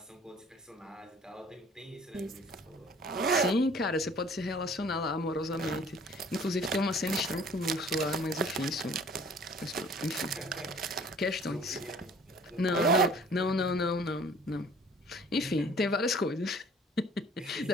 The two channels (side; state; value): both; normal; correlation 0.52